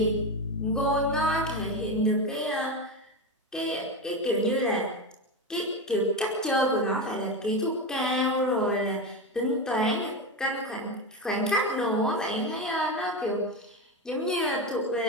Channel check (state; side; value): normal; both; correlation 0.17